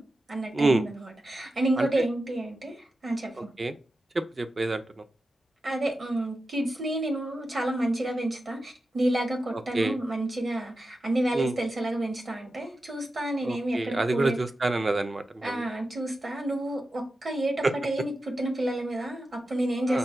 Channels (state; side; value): normal; both; correlation 0.91